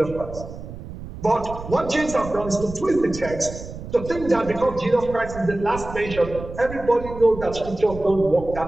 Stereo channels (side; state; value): right; noise; rumble, 12 dB below the sound